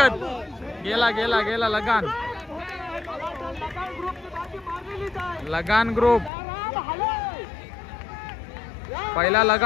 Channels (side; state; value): right; drops out; at 6.3 s